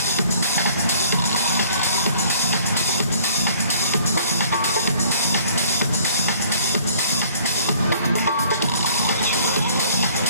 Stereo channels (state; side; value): inverted; both; correlation -0.56